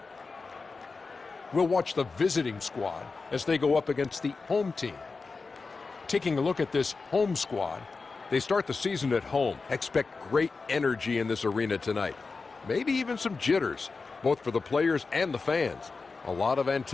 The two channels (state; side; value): quieter; right; 4.3 dB